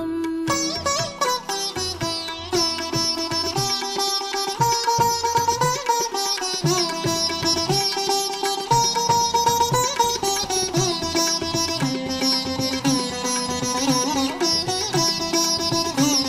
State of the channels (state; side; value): identical; both; correlation 1.00